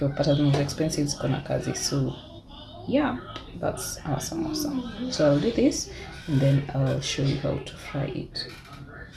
zinauzwa expensive ziko na kazi. So yeah, that's our samosa. So I'll do this, and then I'll show you how to fry it.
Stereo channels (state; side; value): identical; both; correlation 1.00